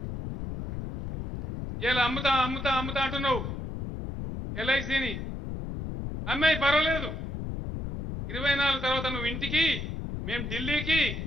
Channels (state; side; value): noise; left; rumble, 6 dB below the sound